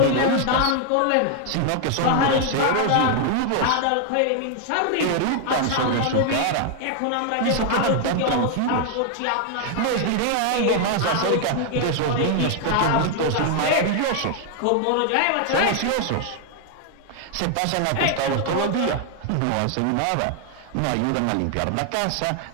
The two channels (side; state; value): both; different; correlation 0.00